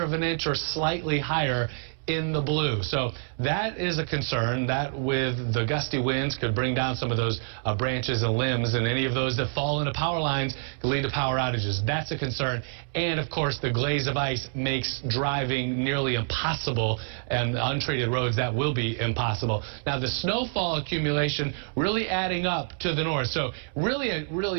of an inch or slightly higher in the blue. So that is a concern. That with the gusty winds could bring down some of those branches and limbs, and any of those that fall into power lines could lead to power outages. That's a concern. And of course, the glaze of ice makes driving nearly impossible, and untreated roads, that will be impossible. Now the snowfall accumulation really adding up to the north. So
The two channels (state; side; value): silent; left; 60 dB below the other